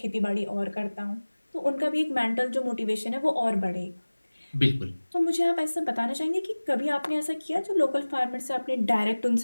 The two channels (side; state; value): both; inverted; correlation -1.00